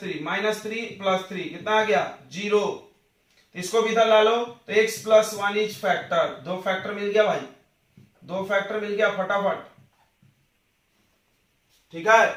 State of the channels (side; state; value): both; identical; correlation 1.00